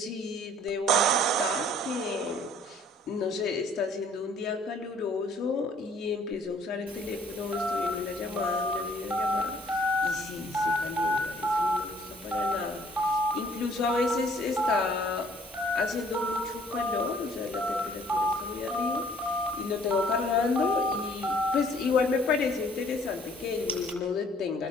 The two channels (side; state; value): both; normal; correlation 0.58